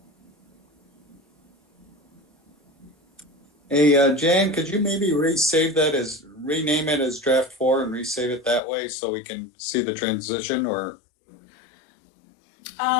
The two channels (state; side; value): drops out; right; at 8.6 s